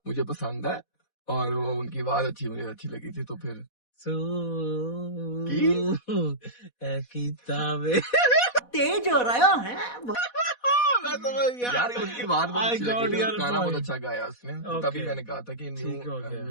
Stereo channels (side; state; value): right; late; 4.1 ms